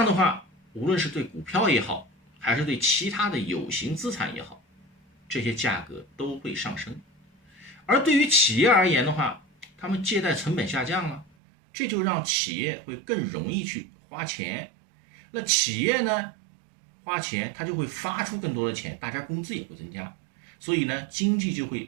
的话，无论是对股票也好，还是对其他的有形资产也好，这些价格都会上升。而对于企业而言的话，他们借贷成本下降了，这就让企业会更容易去花钱。那企业呢花钱，它就会发出更多的钱，大家工资也会增加，所以呢经济就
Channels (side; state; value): left; drops out; at 11.2 s